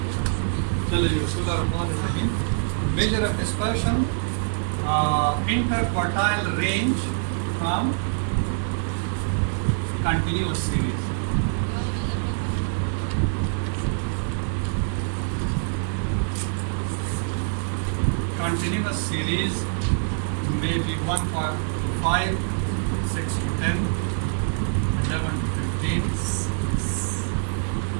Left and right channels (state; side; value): silent; left; 62 dB below the other